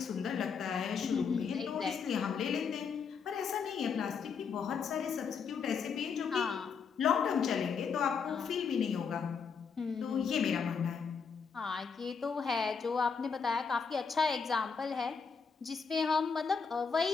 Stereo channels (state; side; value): quieter; right; 5.9 dB